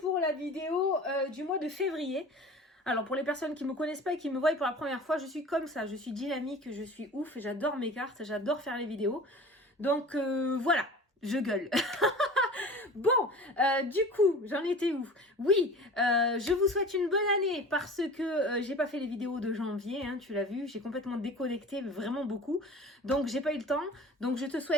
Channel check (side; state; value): both; normal; correlation 0.39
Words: la vidéo du mois de février. Alors pour les personnes qui ne me connaissent pas et qui me voient pour la première fois, je suis comme ça, je suis dynamique, je suis ouf, j'adore mes cartes, j'adore faire les vidéos. Donc voilà, je gueule. Bon, du coup, j'en étais où? Oui, je vous souhaite une bonne année parce que j'ai pas fait les vidéos de janvier, hein, tu l'as vu, j'ai complètement déconnecté, vraiment beaucoup. Donc j'ai pas eu le temps. Donc je te